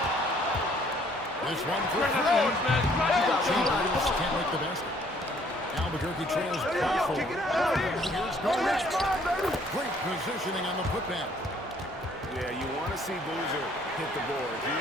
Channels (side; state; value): both; normal; correlation 0.61